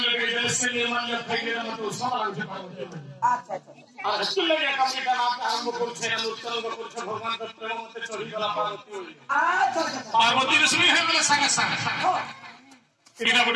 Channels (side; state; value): both; identical; correlation 1.00